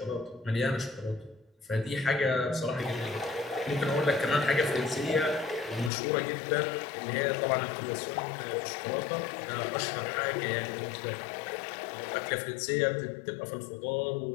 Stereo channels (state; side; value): drops out; right; at 5.9 s